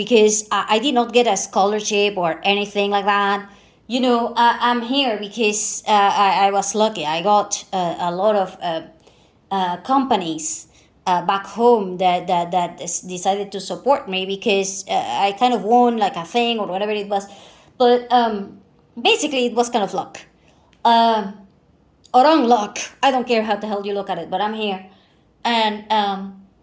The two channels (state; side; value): identical; both; correlation 1.00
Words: I did not get a scholarship or anything like that. I'm here because I was lucky. I got a lot of companies back home that decided to support me because I kind of won like a thing or whatever it was. But basically, it was kind of luck. Um, or unluck. I don't care how the hell you look at it, but I'm here. And,